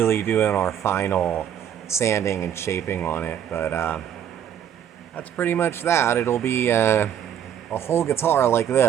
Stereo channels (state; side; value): quieter; left; 9.6 dB